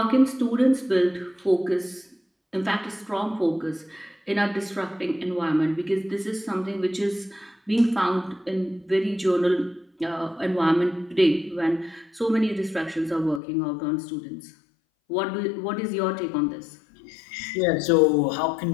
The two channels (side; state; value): right; drops out; at 13.4 s